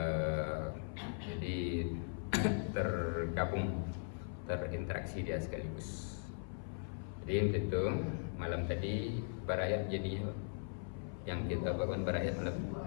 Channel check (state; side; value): silent; right; 52 dB below the other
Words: Jadi tergabung, terinteraksi dia sekaligus. Jadi untuk itu malam tadi berayat, jadi yang kita bangun berayat malam